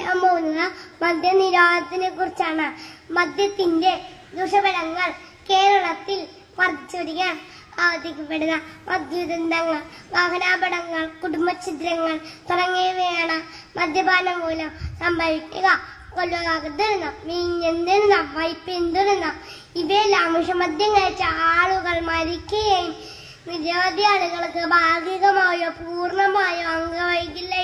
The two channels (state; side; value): identical; both; correlation 1.00